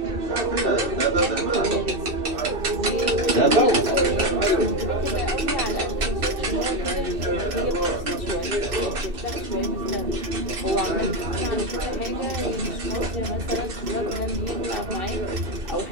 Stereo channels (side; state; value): left; late; 2.6 ms